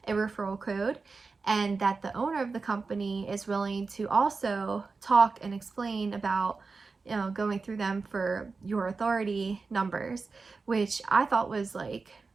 a referral code, and that the owner of the company is willing to also talk and explain about, you know, going through them for your authority numbers, which I thought was like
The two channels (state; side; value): quieter; left; 4.3 dB